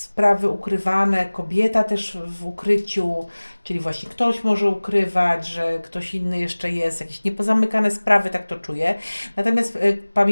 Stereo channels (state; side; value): inverted; both; correlation -1.00